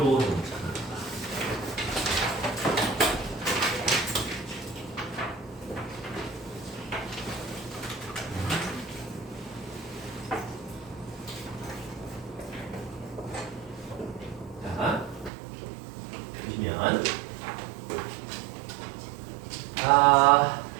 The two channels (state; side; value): drops out; left; at 15.3 s